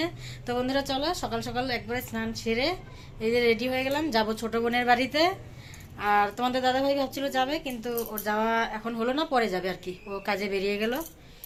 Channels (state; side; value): identical; both; correlation 1.00